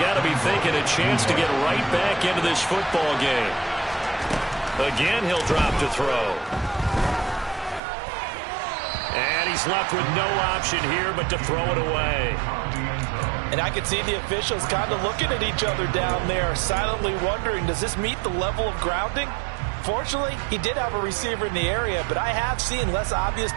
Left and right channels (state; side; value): drops out; left; at 7.8 s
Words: got to be thinking a chance to get right back into this football game. Again, he'll drop to throw. And he's left with no option here but to throw it away. And I could see the officials kind of looking at each other down there, silently wondering, does this meet the level of grounding? Fortunately, he did have a receiver in the area, but I have seen less obvious